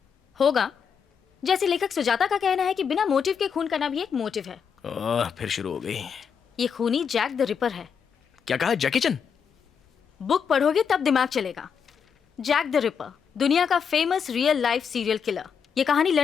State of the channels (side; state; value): right; quieter; 6.8 dB